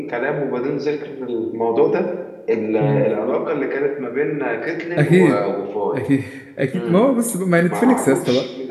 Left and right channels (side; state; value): both; identical; correlation 1.00